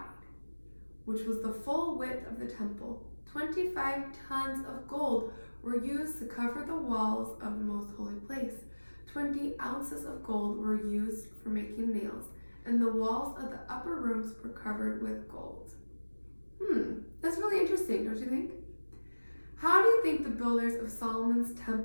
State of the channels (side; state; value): both; inverted; correlation -1.00